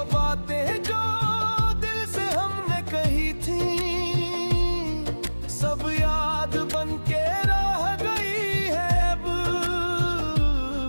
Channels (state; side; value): inverted; both; correlation -1.00